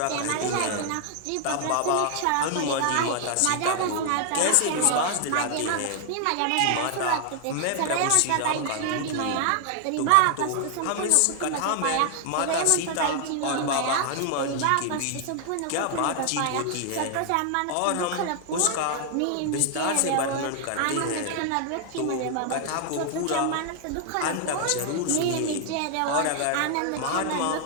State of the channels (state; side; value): different; both; correlation 0.00